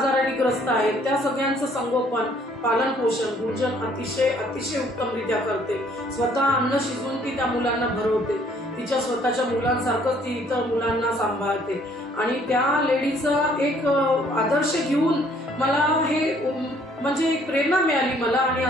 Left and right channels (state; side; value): normal; both; correlation 0.62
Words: ग्रस्त आहेत, त्या सगळ्यांचं संगोपन, पालन पोषण गुंजन अतिशय उत्तमरित्या करते. स्वतः अन्न शिजवून ती त्या मुलांना भरवते. तिच्या स्वतःच्या मुलांसारखंच ती इतर मुलांना सांभाळते आणि त्या लेडीचा एक आदर्श घेऊन मला हे म्हणजे एक प्रेरणा मिळाली मला, आणि